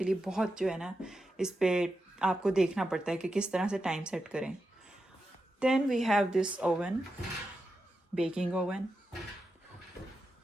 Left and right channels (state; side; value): normal; both; correlation 0.88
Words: लिए। बहुत जो है ना, इस पर आपको देखना पड़ता है कि किस तरह से टाइम सेट करें। Then we have this oven, baking oven,